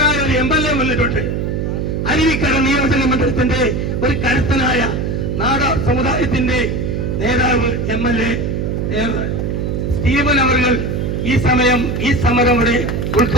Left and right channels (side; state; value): right; noise; hum, 1 dB below the sound